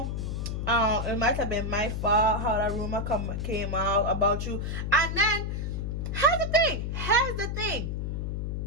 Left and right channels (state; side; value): noise; left; hum, 2 dB below the sound